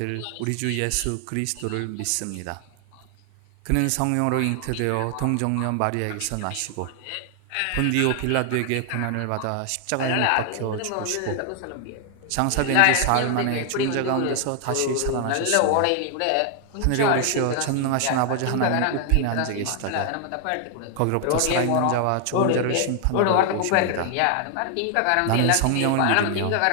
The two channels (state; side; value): different; both; correlation 0.00